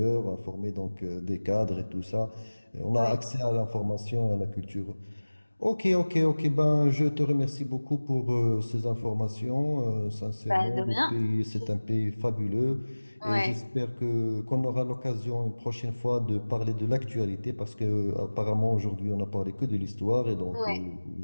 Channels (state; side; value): inverted; both; correlation -1.00